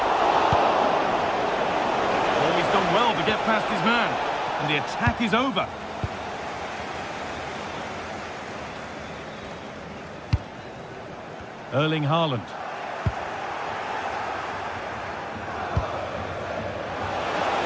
Well to get past his man, and the attack is over. Erling Haaland.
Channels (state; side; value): identical; both; correlation 1.00